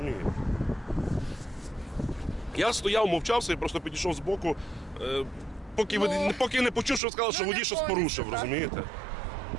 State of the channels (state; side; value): drops out; left; at 7.0 s